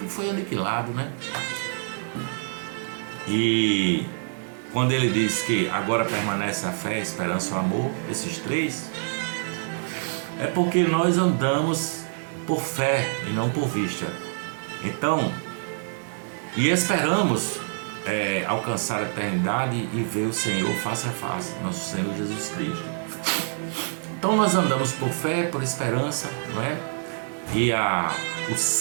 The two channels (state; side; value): silent; left; digital silence